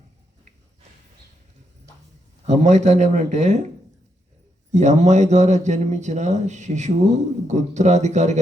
అమ్మాయి తండ్రి ఏమనంటే, ఈ అమ్మాయి ద్వారా జన్మించిన శిశువు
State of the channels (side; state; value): both; normal; correlation 0.80